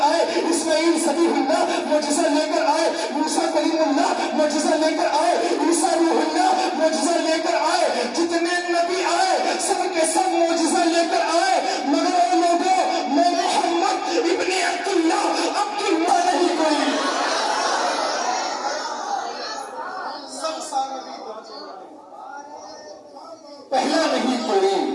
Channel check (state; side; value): identical; both; correlation 1.00